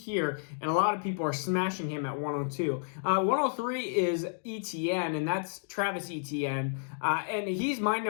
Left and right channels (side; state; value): right; silent; digital silence